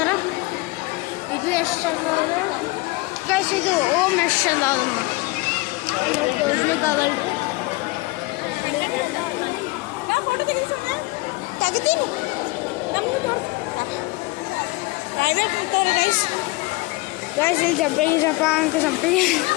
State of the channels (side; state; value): right; quieter; 23.1 dB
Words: ಇದು ಎಷ್ಟು ಗೈಸ್ ಇದು ಓಮ್ ಎಷ್ಟು ತೋರಿಸ್ಲಿಕ್ಕಾಗಲ್ಲ ತೆಗಿತೀನಿ ಗೈಸ್. ಗೈಸ್ ಇಲ್ಲಿ ಜಂಪಿಂಗ್ ಅಂಕ jumping.